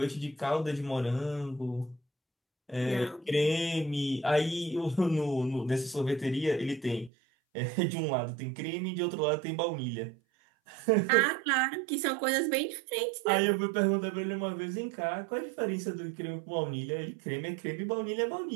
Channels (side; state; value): left; drops out; at 7.1 s